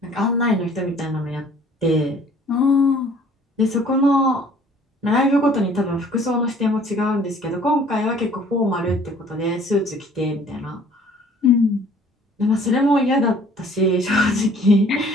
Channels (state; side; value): normal; both; correlation 0.55